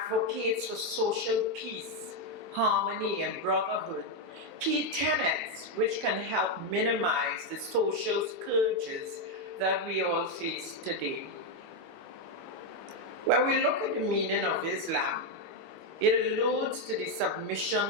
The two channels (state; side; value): normal; both; correlation 0.04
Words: for social peace, harmony, and brotherhood, key tenets which can help minimize the social scourges that we all face today. When we look at the meaning of Islam, it alludes to the